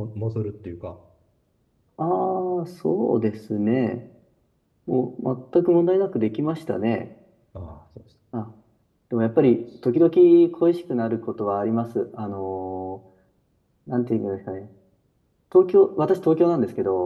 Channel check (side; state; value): both; identical; correlation 1.00